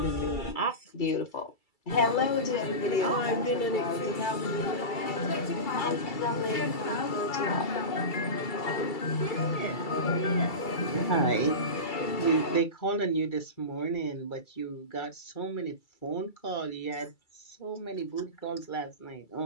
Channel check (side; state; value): right; late; 2.3 ms